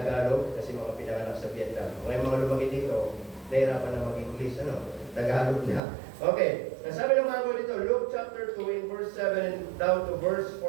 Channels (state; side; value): drops out; left; at 5.8 s